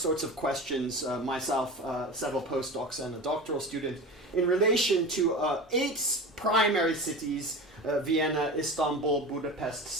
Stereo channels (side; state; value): both; normal; correlation 0.31